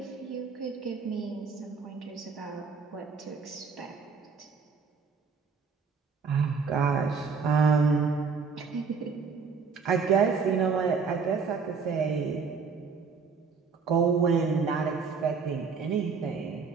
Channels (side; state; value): left; quieter; 5.3 dB